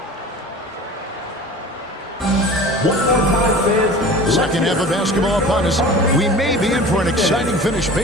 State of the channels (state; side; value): normal; both; correlation 0.39